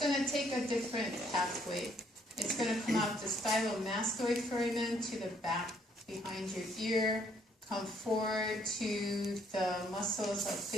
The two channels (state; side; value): normal; both; correlation 0.67